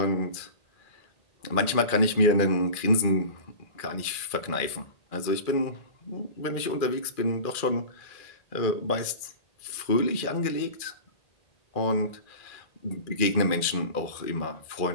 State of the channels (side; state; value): right; late; 2.3 ms